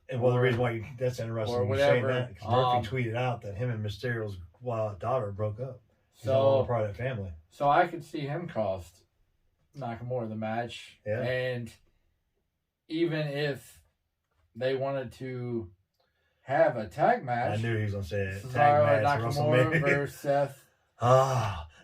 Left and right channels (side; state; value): both; identical; correlation 1.00